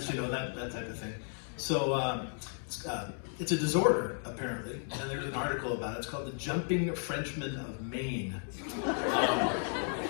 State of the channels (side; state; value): right; silent; 55 dB below the other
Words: that type of thing. So it's a disorder, apparently, and there's an article about it. It's called the Jumping Frenchmen of Maine.